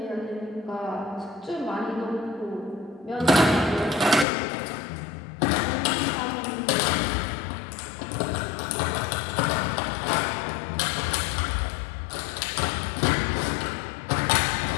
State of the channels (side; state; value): right; drops out; at 4.2 s